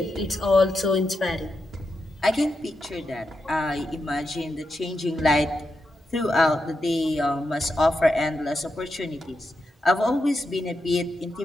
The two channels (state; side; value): normal; both; correlation 0.86